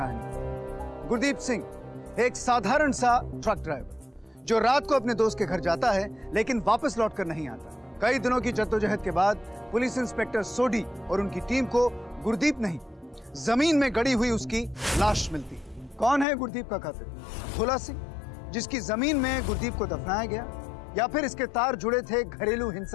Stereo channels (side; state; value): right; drops out; at 16.2 s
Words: गुरदीप सिंह, एक साधारण सा ट्रक ड्राइवर जो रात को अपने दोस्त के घर जाता है लेकिन वापस लौटकर नहीं आता। कई दिनों की जद्दोजहद के बाद पुलिस इंस्पेक्टर सोडी और उनकी टीम को गुरदीप नहीं, जमीन में गड़ी हुई उसकी लाश मिलती है। कौन है गुरदीप का कातिल? भोला सिंह, जिसकी जमीन में गुरदीप को दफनाया गया, या फिर इसके तार जुड़े थे घरेलू